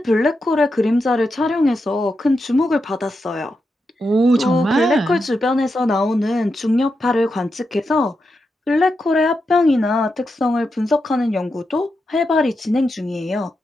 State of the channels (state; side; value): normal; both; correlation 0.87